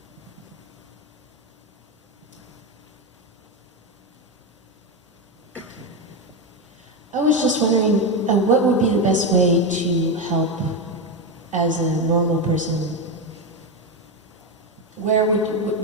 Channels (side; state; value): both; normal; correlation 0.11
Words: I was just wondering, what would be the best way to help as a normal person? Where